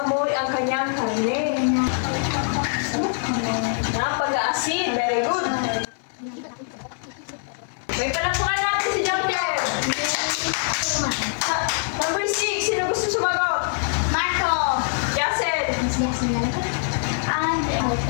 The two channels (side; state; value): right; silent; 57 dB below the other